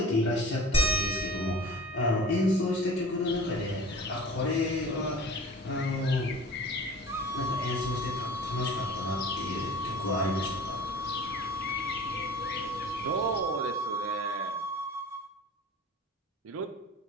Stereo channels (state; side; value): normal; both; correlation 0.41